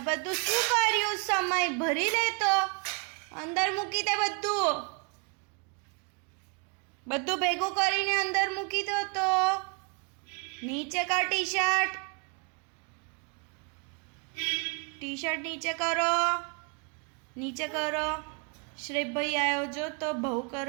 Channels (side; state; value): left; quieter; 36.5 dB